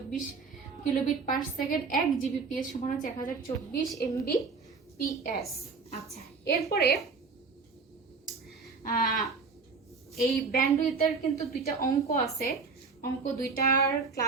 কিলোবিট পার সেকেন্ড, 1 জিবিপিএস সমান হচ্ছে 1024 এমবিপিএস। আচ্ছা, এরপরে এই ব্যান্ডউইথের কিন্তু দুইটা অঙ্ক আছে। অঙ্ক দুইটার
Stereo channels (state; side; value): quieter; left; 4.7 dB